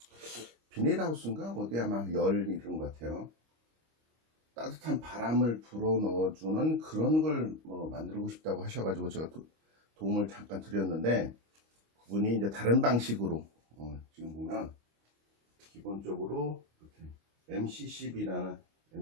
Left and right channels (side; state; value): left; late; 25 ms